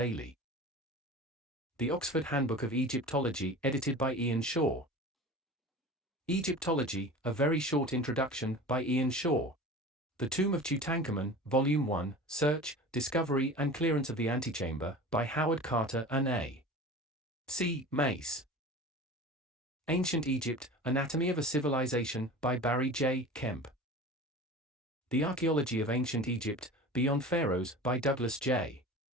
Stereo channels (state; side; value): normal; both; correlation 0.36